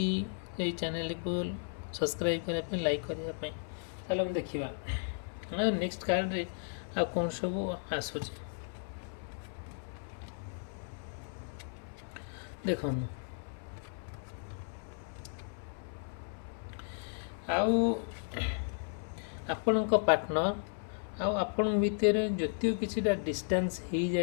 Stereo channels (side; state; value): right; silent; 55 dB below the other